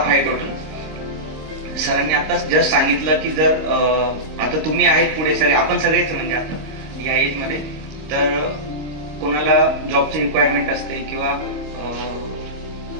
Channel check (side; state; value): left; late; 26 ms